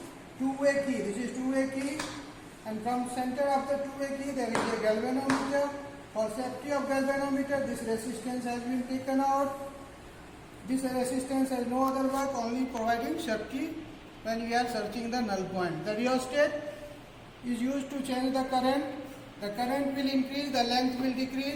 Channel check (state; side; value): identical; both; correlation 1.00